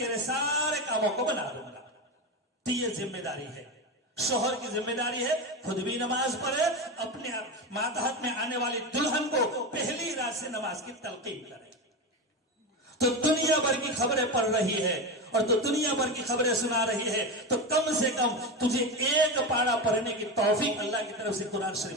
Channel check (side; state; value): both; normal; correlation 0.18